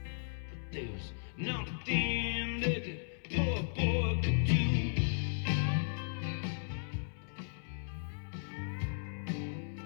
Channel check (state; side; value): silent; right; 54 dB below the other